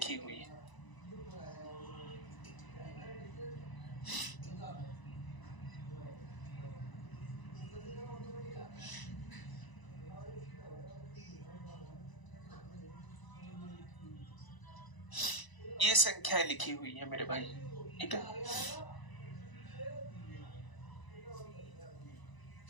हुई है। ये संख्याएं लिखी हुई है मेरे भाई, ठीक है।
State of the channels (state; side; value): late; right; 1.0 ms